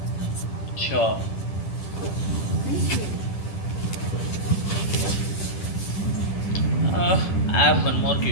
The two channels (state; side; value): late; right; 10 ms